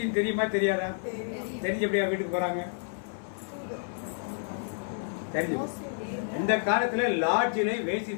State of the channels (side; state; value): right; silent; 58 dB below the other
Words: தெரியுமா தெரியாதா? தெரிஞ்ச எப்படியா வீட்டுக்கு போறாங்க? தெரிஞ்சு. இந்த காலத்துல லாட்ஜிலே